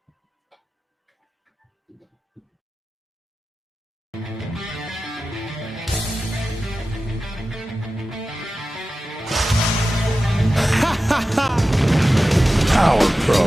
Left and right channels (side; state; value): both; normal; correlation 0.94